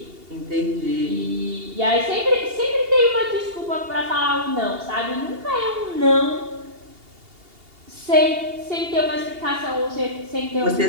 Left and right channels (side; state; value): left; late; 2.8 ms